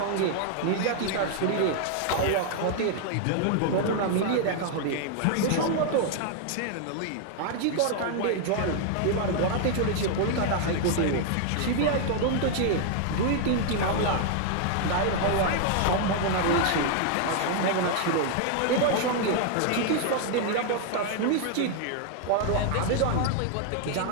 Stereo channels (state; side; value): different; both; correlation 0.00